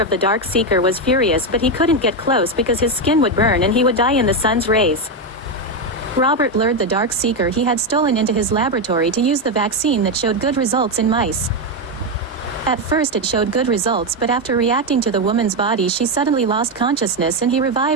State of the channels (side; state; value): both; normal; correlation 0.08